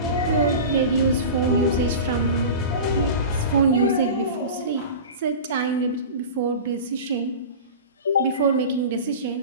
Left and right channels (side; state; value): both; inverted; correlation -0.32